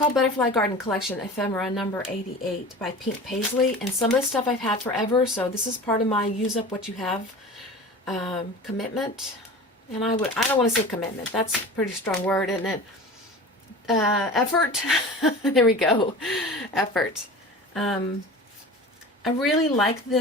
Butterfly Garden Collection Ephemera number 88 by Pink Paisley, and some of the stuff I've had forever, so this is part of my use up what you have commitment. And I don't want to say commitment, that's a pretty strong word, isn't it? Effort. There we go. Effort. I really like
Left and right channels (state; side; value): normal; both; correlation 0.36